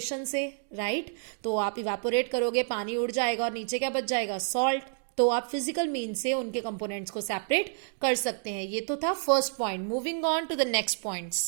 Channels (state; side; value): silent; left; digital silence